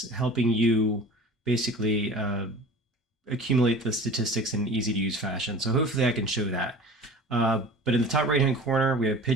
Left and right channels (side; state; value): both; normal; correlation 0.40